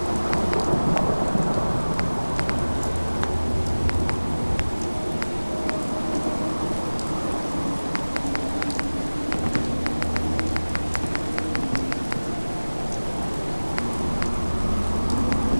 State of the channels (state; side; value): inverted; both; correlation -1.00